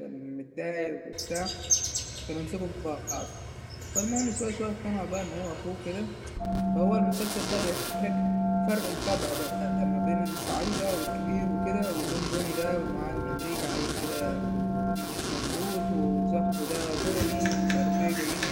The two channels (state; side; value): identical; both; correlation 1.00